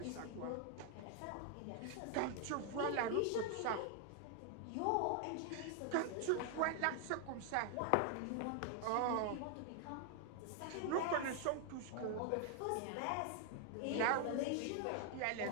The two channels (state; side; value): different; both; correlation 0.00